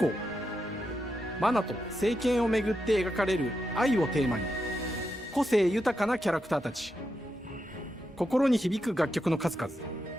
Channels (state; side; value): normal; both; correlation 0.86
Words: マナと聖剣をめぐって描かれる愛をテーマに個性豊かなキャラクターたち、心に響く楽曲の数々、